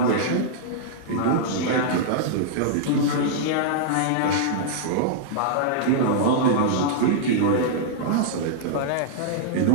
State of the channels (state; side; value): different; both; correlation -0.02